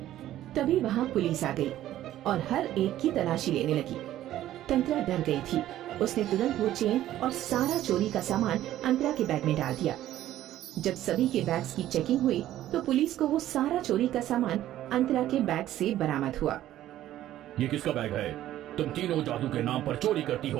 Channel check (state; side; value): quieter; left; 13.2 dB